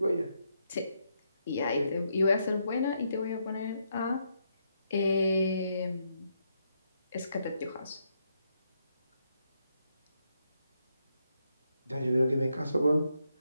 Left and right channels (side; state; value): both; inverted; correlation -0.78